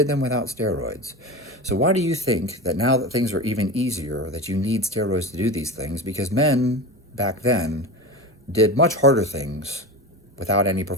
them without steroids. So why do you think that now that things are even easier, that you need steroids to do these things? Because men back then did much harder things without any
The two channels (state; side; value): normal; both; correlation 0.27